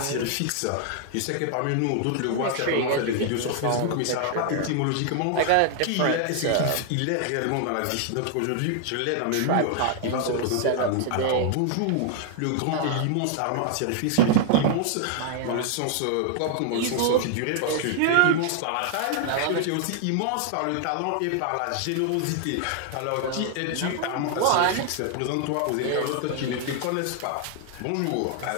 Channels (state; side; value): different; both; correlation 0.00